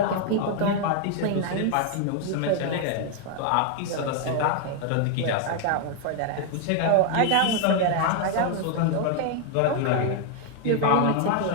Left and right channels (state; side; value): different; both; correlation 0.00